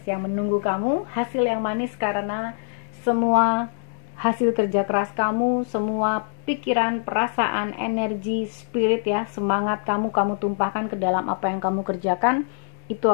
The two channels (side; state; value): right; silent; digital silence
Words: yang menunggu kamu, hasil yang manis karena semua hasil kerja keras kamu, semua pikiran, perasaan, energi, spirit ya, semangat kamu tumpahkan ke dalam apa yang kamu kerjakan, itu